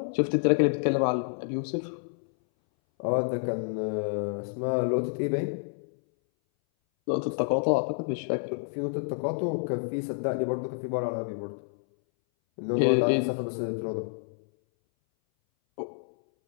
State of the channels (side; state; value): right; silent; 59 dB below the other